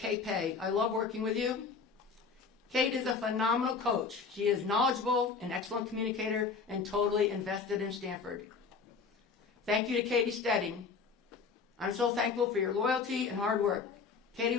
Pay. I love working with you. Kate is a phenomenal coach. She is knowledgeable, an excellent communicator, and totally invested in Stanford. Thank you to Katie Stedding. I'm so thankful for your loyalty and hard work. Katie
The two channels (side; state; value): right; quieter; 5.2 dB